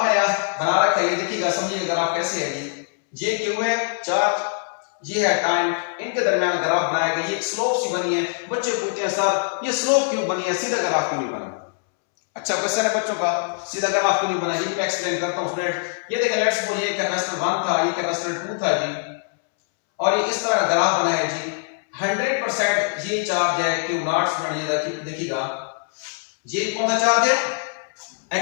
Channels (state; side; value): silent; right; 64 dB below the other